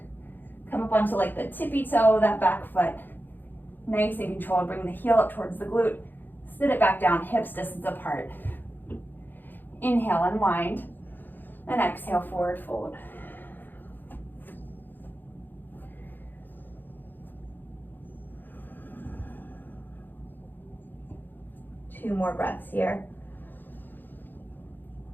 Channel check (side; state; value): right; late; 0.091 ms